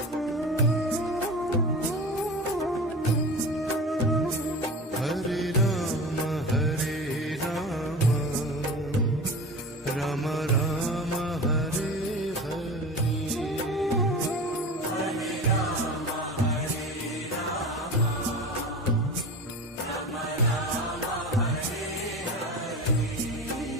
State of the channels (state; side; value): normal; both; correlation 0.32